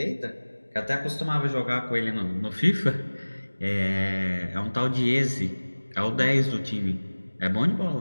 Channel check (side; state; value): both; inverted; correlation -1.00